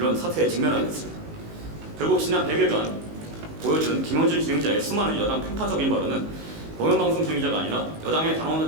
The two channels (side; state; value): left; late; 19 ms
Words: 사태에 직면하게 됐습니다. 결국 지난 100일간 보여준 김어준 진행자의 수많은 여당 편파적인 발언은 공영방송 진행자가 아니라 여당의 단언은